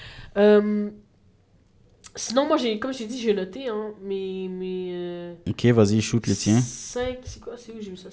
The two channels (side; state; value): both; identical; correlation 1.00